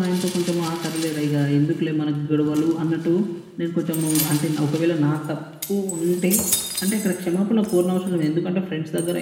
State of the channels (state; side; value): identical; both; correlation 1.00